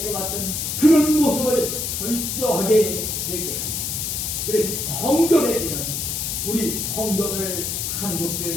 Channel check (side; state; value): left; noise; hiss, 2 dB below the sound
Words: 해왔던 그런 모습을 철저하게 되게 합니다. 그래서 성결해지는 우리 성도들